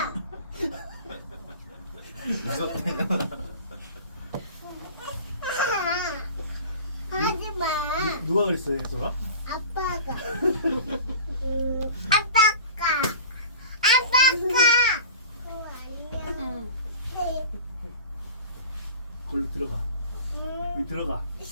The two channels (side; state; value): both; inverted; correlation -0.39